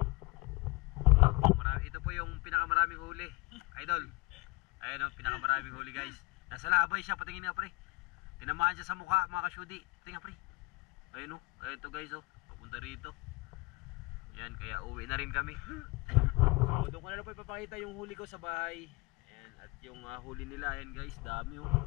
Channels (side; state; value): right; quieter; 25.3 dB